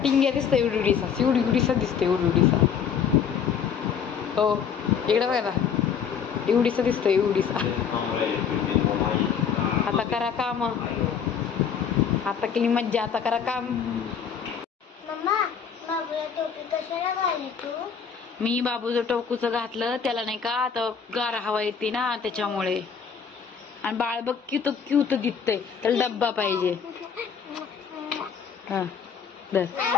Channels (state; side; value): quieter; right; 7.1 dB